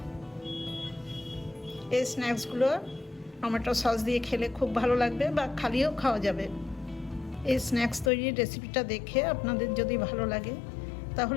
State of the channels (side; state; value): right; drops out; at 8.1 s